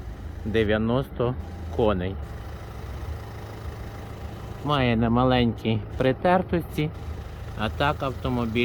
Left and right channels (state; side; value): identical; both; correlation 1.00